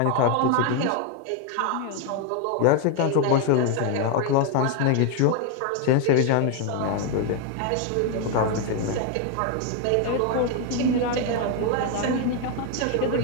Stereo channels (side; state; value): both; different; correlation 0.01